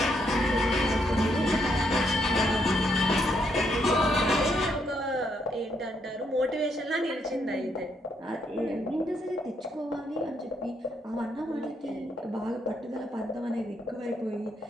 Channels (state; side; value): normal; both; correlation 0.75